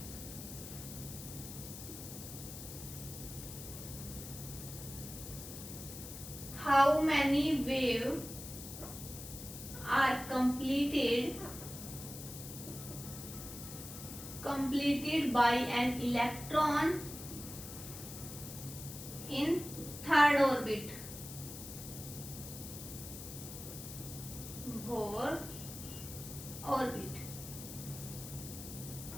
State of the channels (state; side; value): noise; left; hiss, 11 dB below the sound